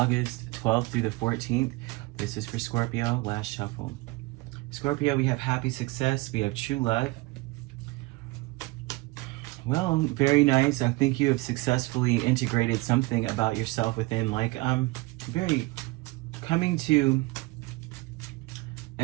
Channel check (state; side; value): quieter; left; 22.5 dB